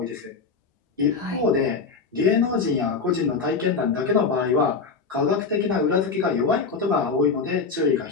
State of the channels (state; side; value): quieter; right; 4.9 dB